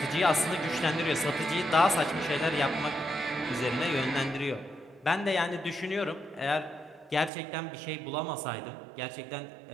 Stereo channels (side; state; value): left; drops out; at 7.3 s